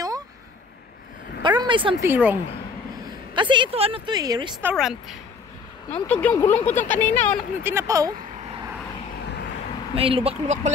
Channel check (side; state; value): right; quieter; 5.0 dB